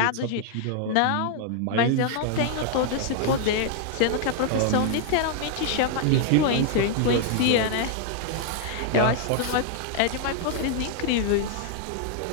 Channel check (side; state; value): both; different; correlation 0.00